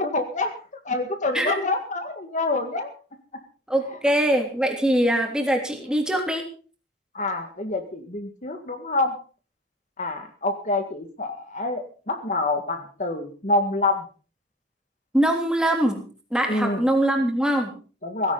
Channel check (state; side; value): normal; both; correlation 0.42